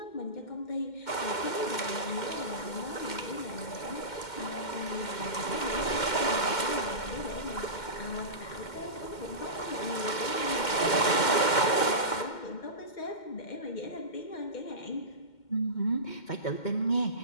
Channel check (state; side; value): late; right; 2.1 ms